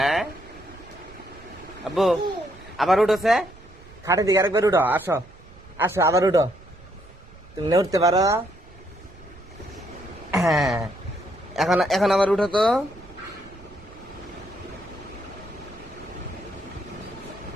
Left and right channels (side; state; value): right; noise; rumble, 22 dB below the sound